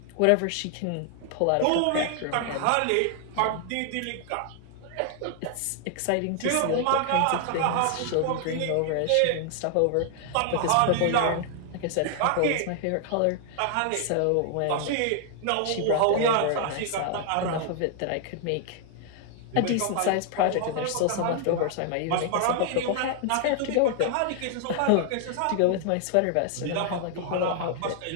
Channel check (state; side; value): different; both; correlation 0.00